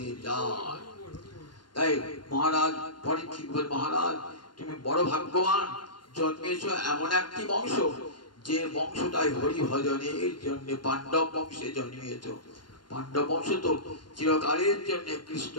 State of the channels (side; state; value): right; late; 0.71 ms